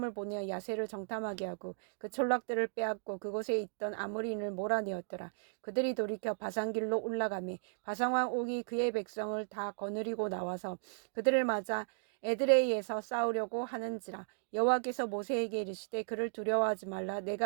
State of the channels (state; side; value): silent; left; digital silence